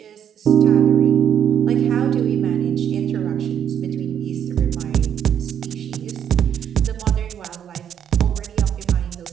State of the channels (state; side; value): quieter; left; 9.1 dB